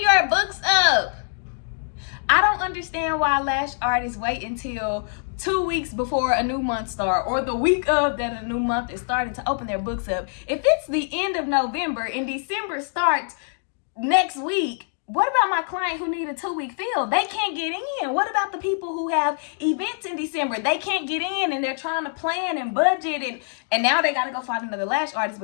books up. I don't understand why lash artists wait until 2 weeks before a new month starts, or the week of that a new month is starting to open their books up. If it's the end of November and December starts next week, what about my client who need a 2-week fill? They can't get in. What about the people who have events in December? They can't get in, and they're trying to plan and budget, and now they got to go find another lash artist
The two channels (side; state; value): right; silent; digital silence